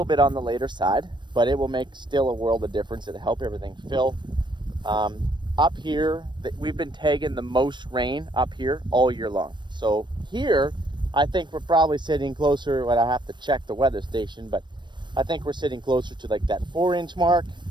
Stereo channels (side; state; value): left; late; 0.22 ms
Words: bit on the later side, but it will make still a world of difference. It'll help everything fill. Up here, we've been tagging the most rain up here all year long. So here, I think we're probably sitting closer, I have to check the weather station, but I think we're sitting closer to like that 4-inch mark,